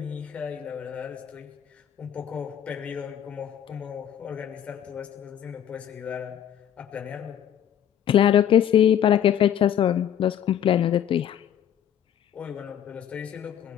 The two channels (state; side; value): quieter; right; 9.9 dB